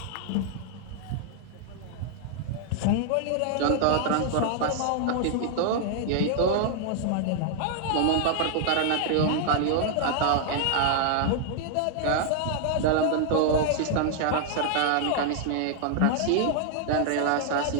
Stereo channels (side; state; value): both; different; correlation -0.01